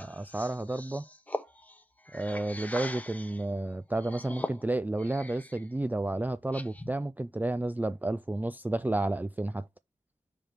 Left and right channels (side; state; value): both; normal; correlation 0.94